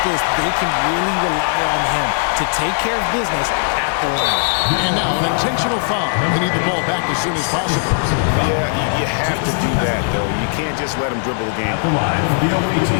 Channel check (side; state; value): right; silent; digital silence